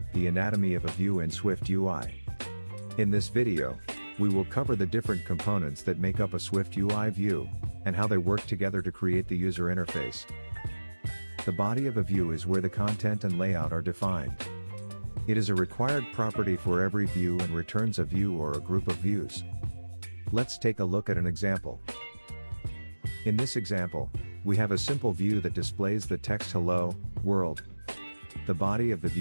the anatomy of a view in SwiftUI. In this video, we will cover the different components that make up a SwiftUI view, and how they work together to create the user interface. The body of a view is where the content and layout are defined. It is a required property for every view and returns a view or a group of views. Let's take a look at an example. In this example, we have a simple view that displays the text "Hello, World." The body of the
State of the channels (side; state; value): both; inverted; correlation -1.00